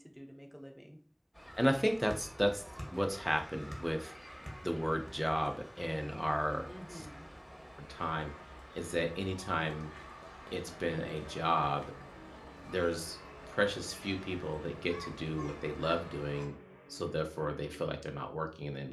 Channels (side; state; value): both; identical; correlation 1.00